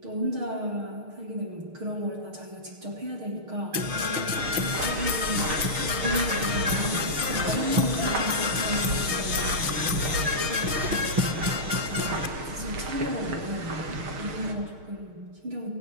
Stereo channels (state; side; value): late; left; 6.5 ms